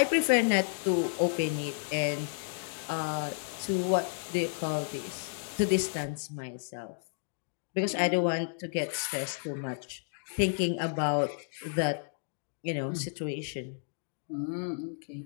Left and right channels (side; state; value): right; silent; digital silence